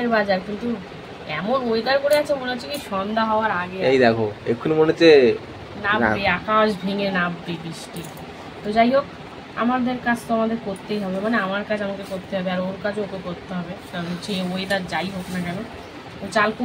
বাজার, কিন্তু এমন ওয়েদার করে আছে মনে হচ্ছে কি সন্ধ্যা হওয়ার আগে। এই দেখো এক্ষুনি মনে হচ্ছে নামবে, আকাশ ভেঙে নামবে বৃষ্টি। তো যাই হোক, আমাদের কাজ তো আমাদের করতেই হবে, মানে আমার কাজ আমাকে করতে হবে আর ওর কাজও ওকে করতে হবে, কারণ হচ্ছে ওয়েদার যাই হোক না কেন। তো চাল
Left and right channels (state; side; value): identical; both; correlation 1.00